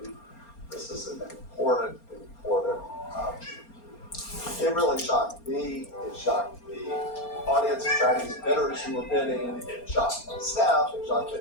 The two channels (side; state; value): right; late; 4.3 ms